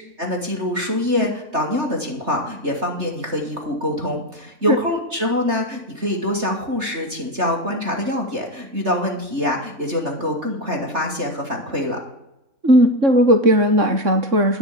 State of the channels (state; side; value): late; left; 3.3 ms